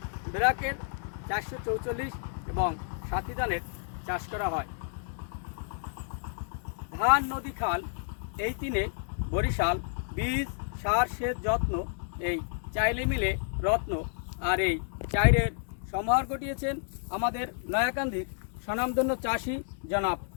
বেরাকের 444 এবং সাথী ধানের চাষ করা হয়। ধান, নদী, খাল এই তিনে বরিশাল বীজ, সার, সেচ, যত্ন এই চাইলে মিলে রত্ন। আর এই চাইরের সমাহার ঘটিয়েছেন আমাদের নয়াকান্দির স্বনামধন্য চাষি জনাব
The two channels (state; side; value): silent; right; digital silence